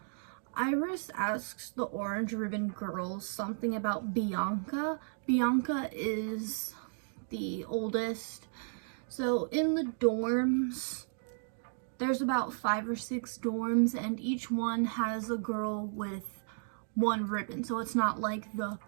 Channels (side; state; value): left; silent; digital silence